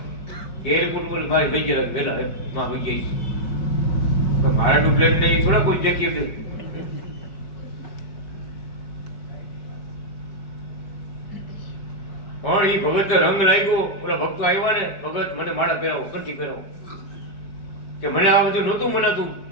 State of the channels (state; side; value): late; right; 4.8 ms